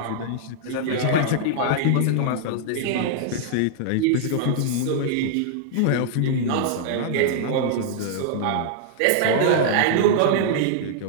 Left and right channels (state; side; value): different; both; correlation -0.01